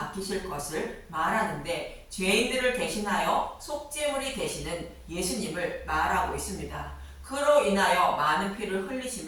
것을 말하는데 죄인들을 대신하여 속죄물이 되시는 예수님을 말하고 있습니다. 그로 인하여 많은 피를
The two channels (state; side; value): identical; both; correlation 1.00